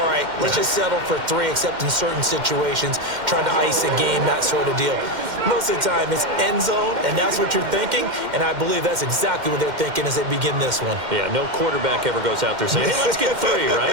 right, let's just settle for 3, except in certain situations, trying to ice a game, that sort of deal. Most of the time, it's end zone, and that's what you're thinking, and I believe that's exactly what they're thinking as they begin this one. Yeah, no quarterback ever goes out there saying, hey, let's get 3,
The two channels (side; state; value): left; late; 2.1 ms